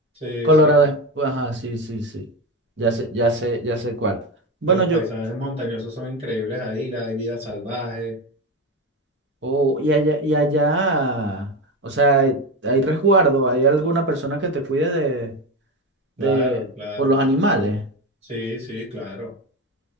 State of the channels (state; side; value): normal; both; correlation 0.18